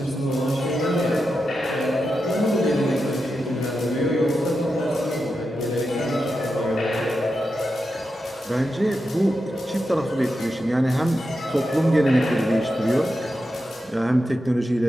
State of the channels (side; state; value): both; normal; correlation 0.88